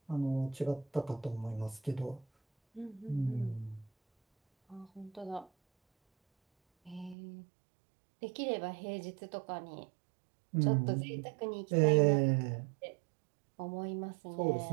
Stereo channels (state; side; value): drops out; left; at 7.2 s